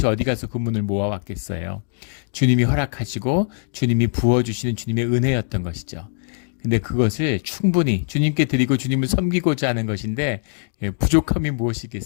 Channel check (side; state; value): right; silent; digital silence